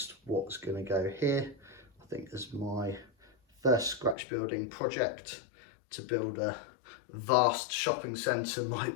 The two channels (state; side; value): drops out; right; at 4.2 s